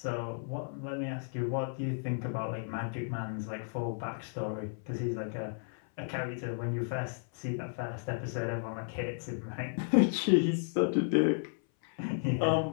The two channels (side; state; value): right; silent; 55 dB below the other